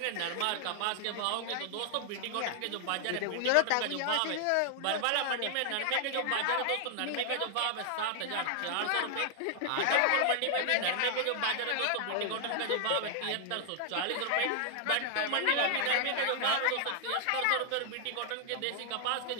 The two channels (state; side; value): different; both; correlation 0.00